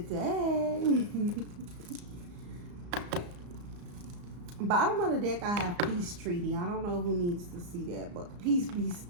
day. Bottom of the deck, I have peace treaty. I don't know who needs to see that, but peace be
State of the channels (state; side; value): late; left; 34 ms